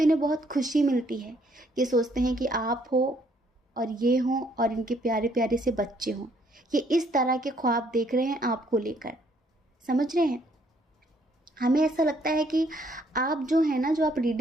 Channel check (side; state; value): both; normal; correlation 0.67